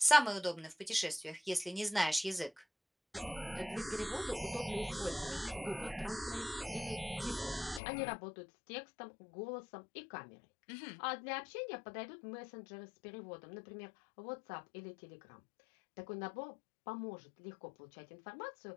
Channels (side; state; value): right; drops out; at 7.8 s